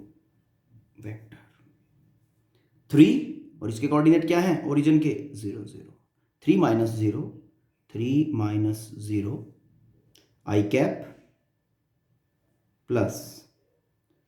वेक्टर 3, और इसके कोऑर्डिनेट क्या है ओरिजिन के 0 0, 3 minus 0, 3 minus 0 i cap plus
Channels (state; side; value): identical; both; correlation 1.00